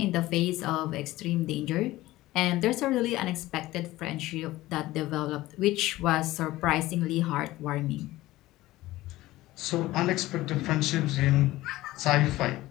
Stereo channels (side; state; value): right; quieter; 17.2 dB